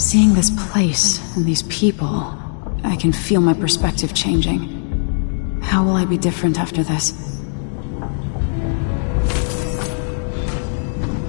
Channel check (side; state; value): right; silent; digital silence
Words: this place and these people, I can feel my perspective changing. How will I be different after this?